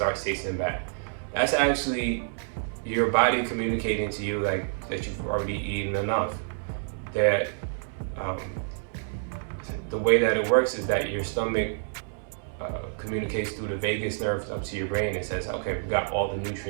tasting bad. That's actually your body communicating to you like that you've already eaten enough. That the way that it works is that your stomach communicates through the vagus nerve up to your brain and says, okay, we got all the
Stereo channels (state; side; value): silent; left; 59 dB below the other